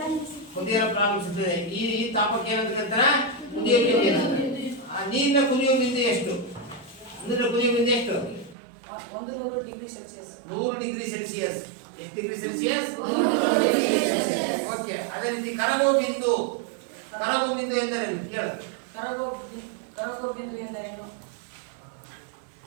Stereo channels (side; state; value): left; drops out; at 8.6 s